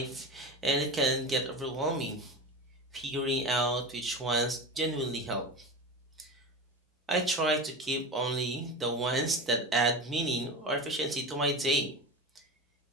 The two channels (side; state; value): both; normal; correlation 0.27